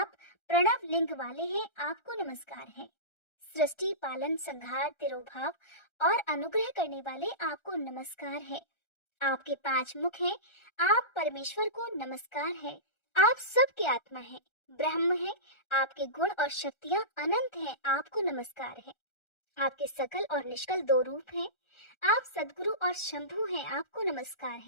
प्रणव लिंग वाले हैं, आपको नमस्कार है। सृष्टि पालन संहार तिरोभाव और अनुग्रह करने वाले आपको नमस्कार है। आपके 5 मुख हैं, आप परमेश्वर को नमस्कार है। आप सबके आत्मा हैं, ब्रह्म हैं, आपके गुण और शक्तियां अनंत हैं, आपको नमस्कार है। आपके सकल और निष्कल 2 रूप हैं, आप सदगुरु और शंभु हैं, आपको नमस्कार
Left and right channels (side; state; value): right; late; 1.3 ms